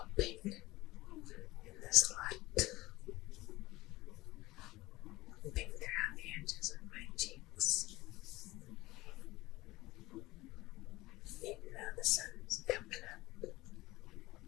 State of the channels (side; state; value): right; quieter; 19.2 dB